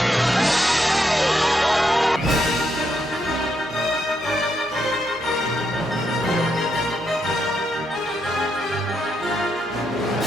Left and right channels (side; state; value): both; normal; correlation 0.79